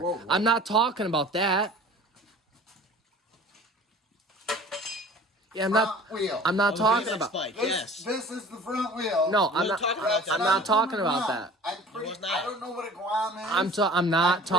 Whoa. I'm not talking about that. Yeah, I'm not talking about. This is the front wheel. No, I'm not talking about that. I don't know what a Guam is. I'm not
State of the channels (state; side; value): normal; both; correlation 0.44